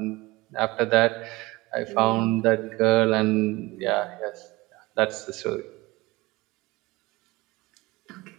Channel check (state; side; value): quieter; left; 21.6 dB